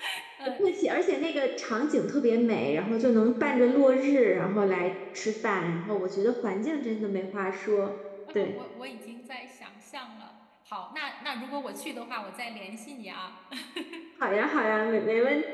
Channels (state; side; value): identical; both; correlation 1.00